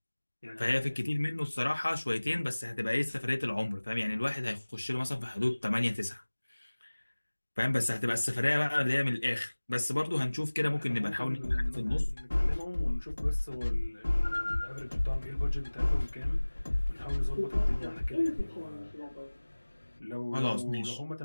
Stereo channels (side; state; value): both; inverted; correlation -1.00